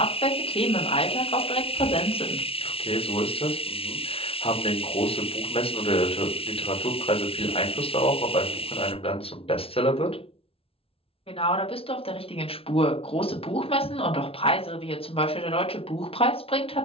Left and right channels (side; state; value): right; late; 0.27 ms